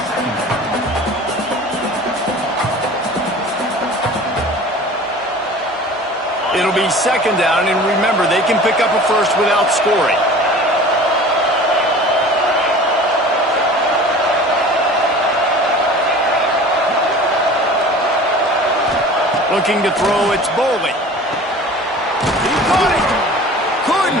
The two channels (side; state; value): both; normal; correlation 0.42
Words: It'll be second down, and remember, they can pick up a first without scoring. Looking to throw, it's Bowling. He caught it.